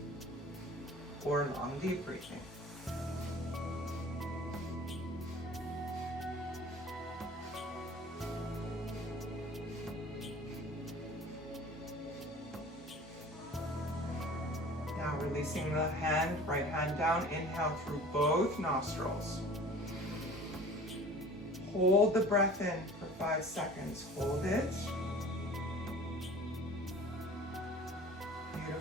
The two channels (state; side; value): normal; both; correlation 0.44